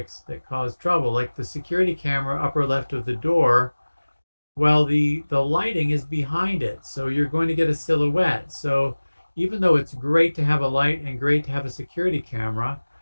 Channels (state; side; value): inverted; both; correlation -1.00